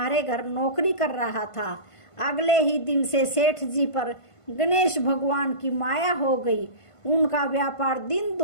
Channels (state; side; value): late; right; 1.5 ms